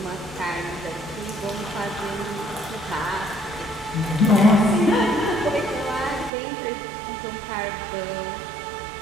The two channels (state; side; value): drops out; left; at 6.3 s